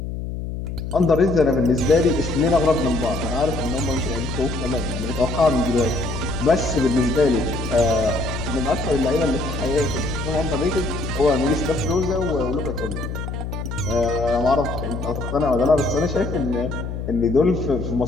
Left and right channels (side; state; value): left; noise; hum, 6 dB below the sound